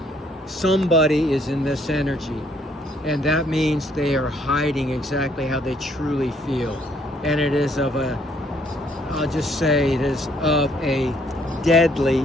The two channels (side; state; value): both; normal; correlation 0.66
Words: somebody is in this energy. And that means they are hiding exactly how they truly feel. And it is of a, I'll just say it is of a deadly